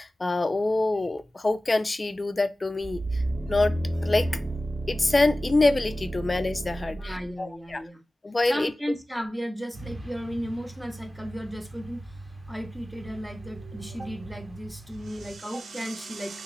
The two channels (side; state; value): both; normal; correlation 0.97